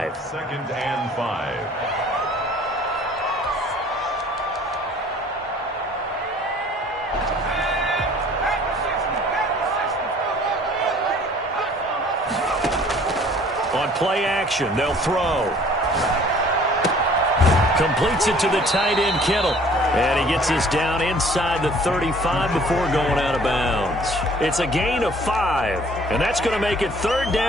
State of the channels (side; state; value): both; normal; correlation 0.54